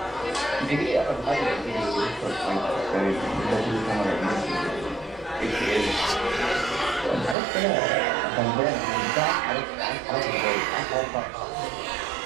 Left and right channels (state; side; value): drops out; left; at 7.4 s